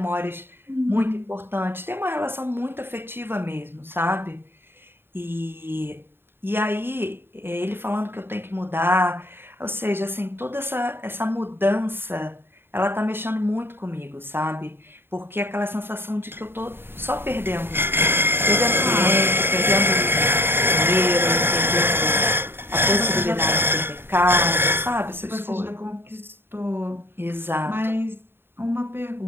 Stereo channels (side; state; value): left; late; 0.11 ms